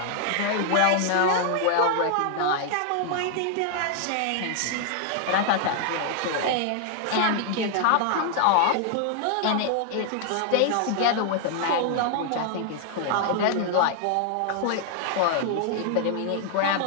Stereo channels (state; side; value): different; both; correlation 0.00